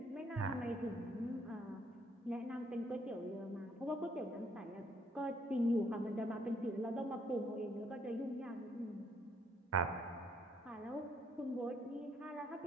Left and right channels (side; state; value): both; normal; correlation 0.68